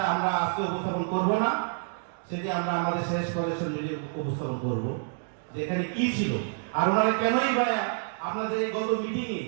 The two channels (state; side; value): silent; left; digital silence